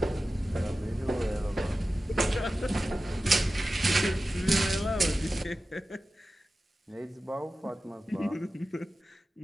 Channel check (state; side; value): normal; both; correlation 0.95